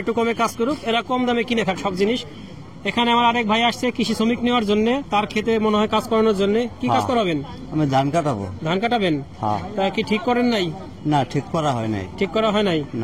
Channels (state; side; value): identical; both; correlation 1.00